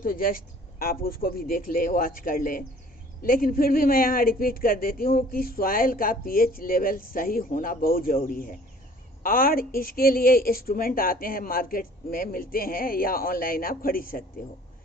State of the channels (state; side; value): normal; both; correlation 0.52